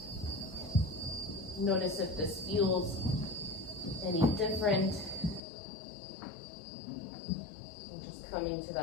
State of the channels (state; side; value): drops out; right; at 5.4 s